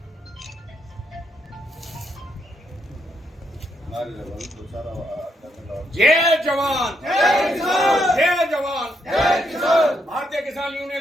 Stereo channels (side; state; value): both; normal; correlation 0.77